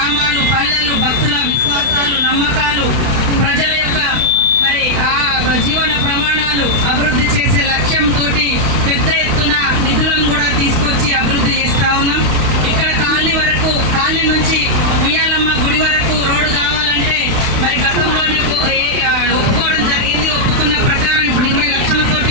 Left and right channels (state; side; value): late; left; 32 ms